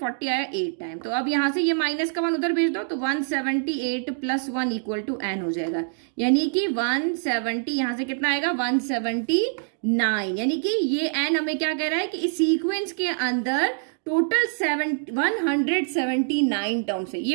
आया 8 टाइम, तो अब यहाँ से ये माइनस का 1 उधर भेज दो, तो 178 प्लस 1 इक्वल टू n हो जाएगा, यानी कि 170 यहाँ से कितना आएगा 179, यानी कि ये n हमें क्या कह रहा है कि इस सीक्वेंस के अंदर टोटल 179 टर्म्स है।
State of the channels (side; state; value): left; silent; digital silence